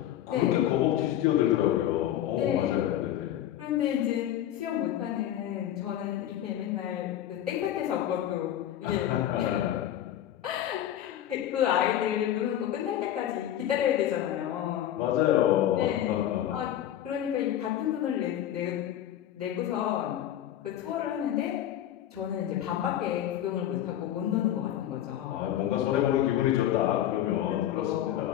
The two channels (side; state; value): right; quieter; 11.8 dB